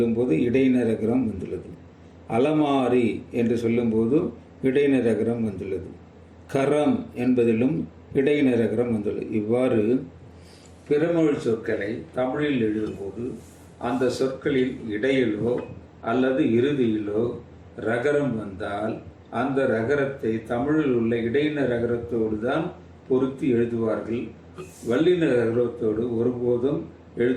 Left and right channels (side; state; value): both; identical; correlation 1.00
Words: இடையின ரகரம் வந்துள்ளது. அலமாரி என்று சொல்லும்போது இடையின ரகரம் வந்துள்ளது. கரம் என்பதிலும் இடையின ரகரம் வந்துள்ளது. இவ்வாறு பிறமொழி சொற்களை தமிழில் எழுதும்போது அந்த சொற்களில் இடையிலோ அல்லது இறுதியிலோ ரகரம் வந்தால் அந்த ரகரத்தை தமிழில் உள்ள இடையின ரகரத்தோடு தான் பொருத்தி எழுதுவார்கள். வல்லின ரகரத்தோடு ஒருபோதும்